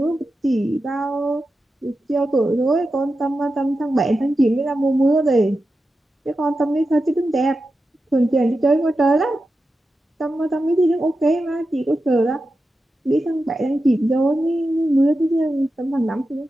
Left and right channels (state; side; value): normal; both; correlation 0.91